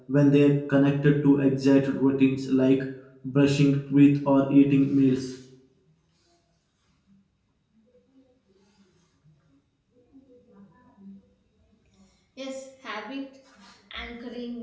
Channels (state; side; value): identical; both; correlation 1.00